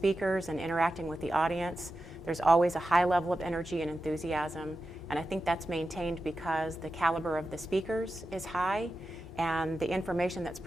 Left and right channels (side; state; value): both; normal; correlation 0.91